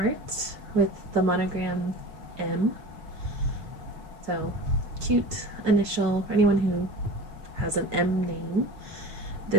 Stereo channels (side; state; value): left; late; 5.1 ms